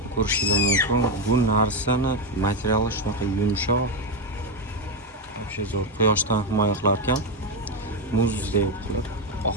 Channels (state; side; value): normal; both; correlation 0.08